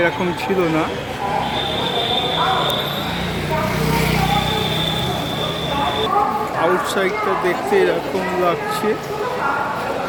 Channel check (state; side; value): identical; both; correlation 1.00